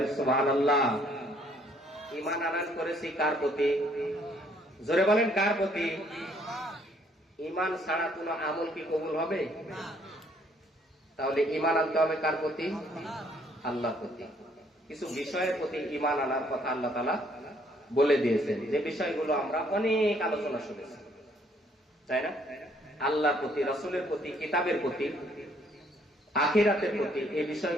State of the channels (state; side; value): normal; both; correlation 0.65